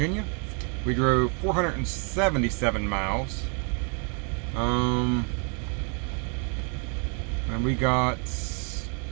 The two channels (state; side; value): quieter; left; 39.2 dB